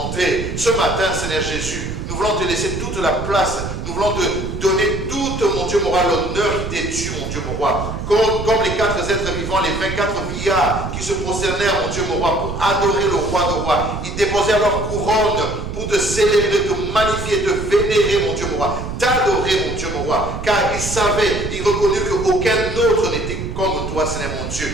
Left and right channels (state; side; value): noise; right; rumble, 6 dB below the sound